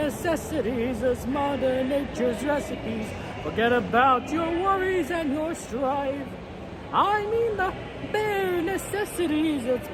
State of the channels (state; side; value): identical; both; correlation 1.00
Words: as Mother Nature's recipes. Forget about your worries and your strife. I mean the bare necessities. It's